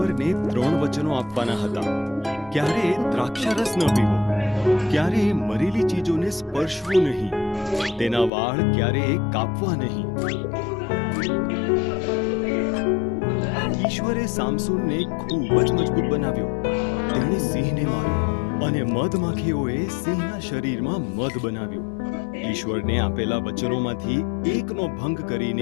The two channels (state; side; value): drops out; right; at 8.3 s